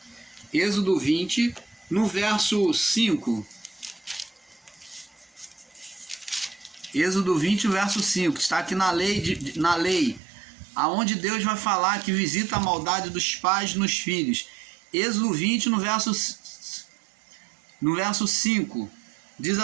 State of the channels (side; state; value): left; drops out; at 10.2 s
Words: Êxodo 20, no verso 5. Êxodo 20, verso 5, está aqui na lei, aonde Deus vai falar que visita a maldade dos pais nos filhos. Êxodo 20, no verso 5, diz